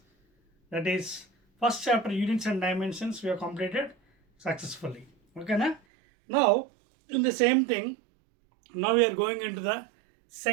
that is first chapter units and dimensions we have completed successfully. ఓకేనా? Now in the same thing, now we are going into the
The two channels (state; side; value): drops out; left; at 5.8 s